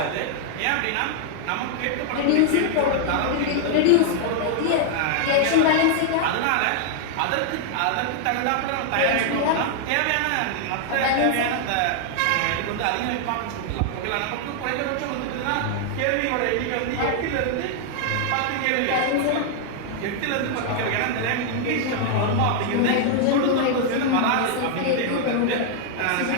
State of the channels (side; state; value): both; different; correlation 0.00